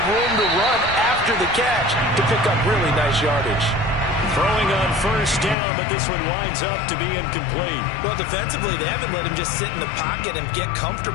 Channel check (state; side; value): drops out; right; at 5.6 s